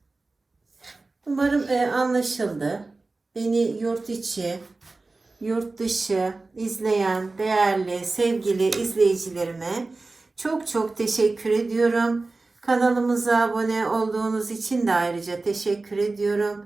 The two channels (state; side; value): quieter; left; 3.5 dB